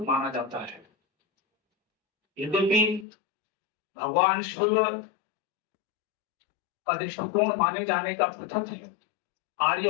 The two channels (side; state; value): right; drops out; at 3.1 s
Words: माना जाता है। यद्यपि भगवान शिव का दृष्टिकोण माने जाने का पृथक है। आर्य